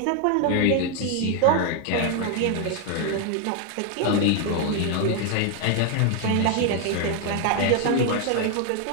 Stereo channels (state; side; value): different; both; correlation 0.01